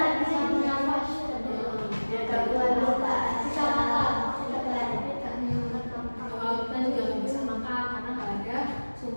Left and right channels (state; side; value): inverted; both; correlation -1.00